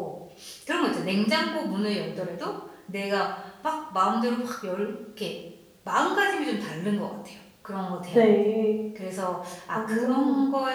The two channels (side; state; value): both; identical; correlation 1.00